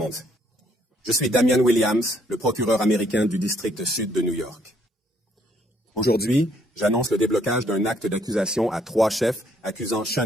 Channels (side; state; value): both; normal; correlation 0.68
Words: Je suis Damian Williams, le procureur américain du district sud de New York. Aujourd'hui, j'annonce le déblocage d'un acte d'accusation à 3 chefs accusant